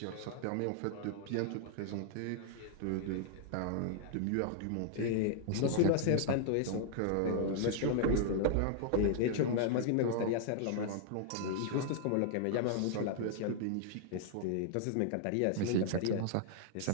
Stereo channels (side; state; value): both; different; correlation 0.00